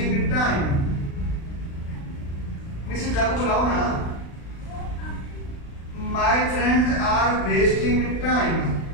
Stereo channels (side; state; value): right; late; 36 ms